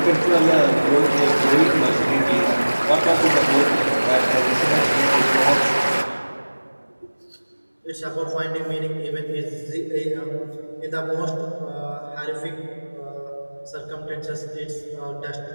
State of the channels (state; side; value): inverted; both; correlation -1.00